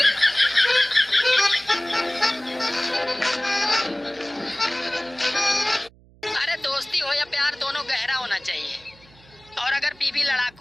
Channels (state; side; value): noise; right; hum, 27 dB below the sound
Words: अरे दोस्ती हो या प्यार दोनों गहरा होना चाहिए, और अगर बीवी